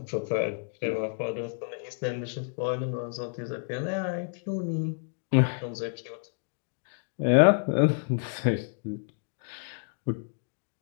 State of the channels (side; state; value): right; silent; 58 dB below the other